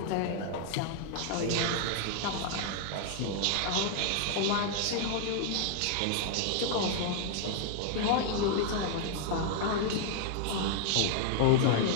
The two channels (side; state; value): both; different; correlation 0.00